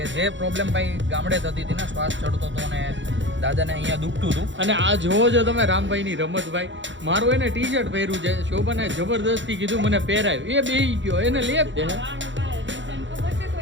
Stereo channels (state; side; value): late; left; 0.54 ms